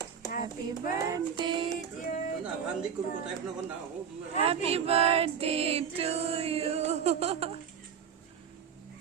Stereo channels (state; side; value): quieter; left; 7.6 dB